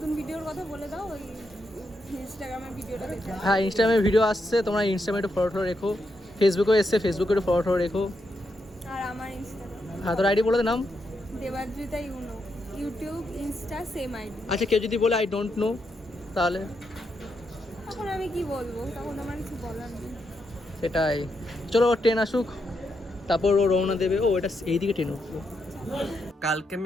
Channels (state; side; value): normal; both; correlation 0.82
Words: ভিডিওর কথা বলে দাও, ওই ইনস্টাগ্রামের ভিডিওটা দেখে। হ্যাঁ ইনস্টাগ্রামে ভিডিও আসছে, তোমরা ইনস্টাগ্রামে একটু ফলো রেখো। ফেসবুকেও এসছে, ফেসবুকে একটু ফলো রেখো। আর আমার ইনস্টাগ্রাম হ্যাঁ তোর আইডি বলে দে নাম। Debadrita you know, YouTube Insta same ID. আচ্ছা কেউ যদি বলে আই ডোন্ট নো, তাহলে তখন আমি কি বলবো, তখন আমার কিছু বলার নেই। সেটাই। চলো ট্রেন আসুক, তারপর ও রওনা দেবে। ও এটা এইদিকে ট্রেন উঠলো। কালকে